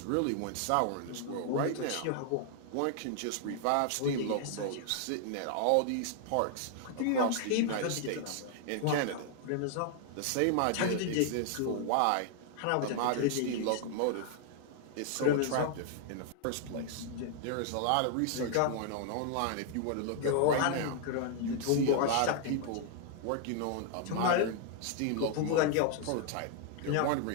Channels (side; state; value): both; different; correlation 0.00